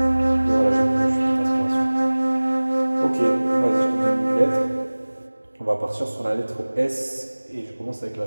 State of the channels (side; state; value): both; inverted; correlation -1.00